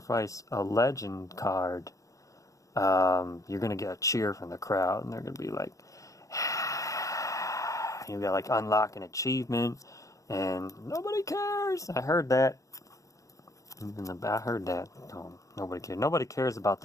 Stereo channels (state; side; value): late; right; 0.16 ms